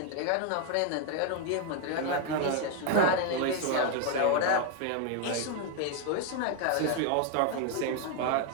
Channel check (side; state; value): both; different; correlation 0.01